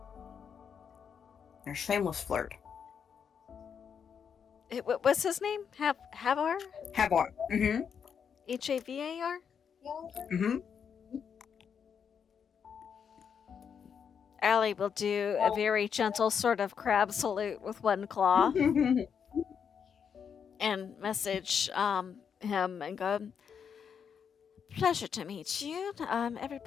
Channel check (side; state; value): right; quieter; 7.2 dB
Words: You're a shameless flirt. What's his name? Havar? Havar. Mm-hmm. Havar? Mm-hmm. Allie will do a very gentle sort of crab salute with one claw and message him and go, pleasure to meet you.